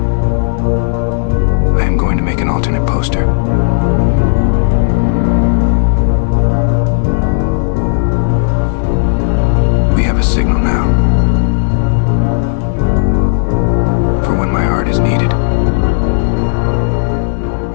I am going to make an alternate poster. We have a signal now for when my art is needed.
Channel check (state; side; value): silent; right; digital silence